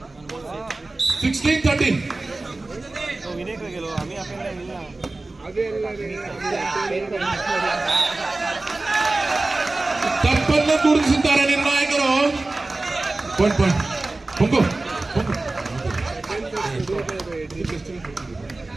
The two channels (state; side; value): quieter; left; 3.1 dB